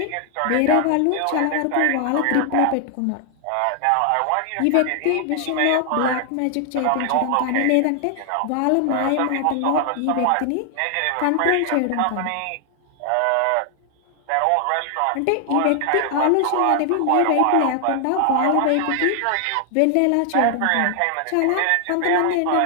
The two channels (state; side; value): different; both; correlation 0.00